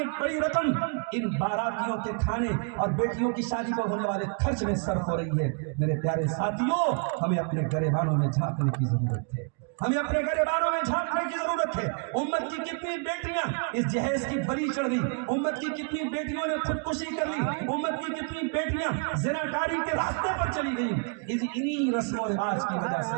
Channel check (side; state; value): left; quieter; 38.2 dB